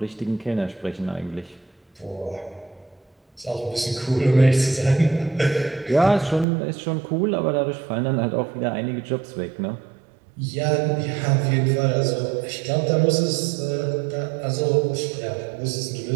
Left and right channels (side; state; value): left; drops out; at 6.5 s